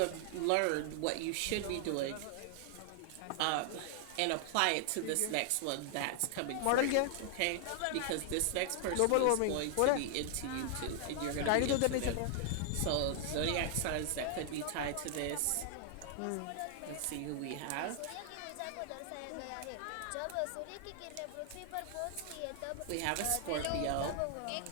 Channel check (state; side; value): different; both; correlation 0.00